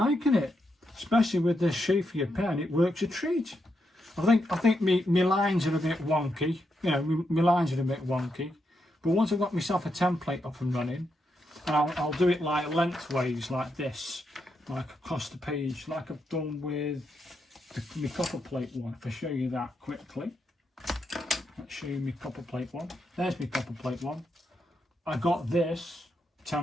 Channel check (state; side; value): normal; both; correlation 0.82